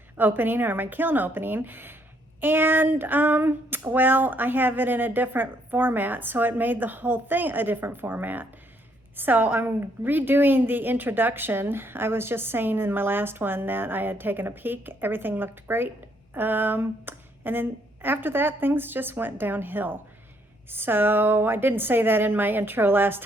opening, or my kiln opening. And well, I have it in a different format, so it made the whole thing a different format. So I'm redoing the introduction. I was just saying in my last one that I had taken a peek, everything looked great. And then after that, things just went downhill. So I didn't say that in my intro last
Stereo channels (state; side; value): normal; both; correlation 0.70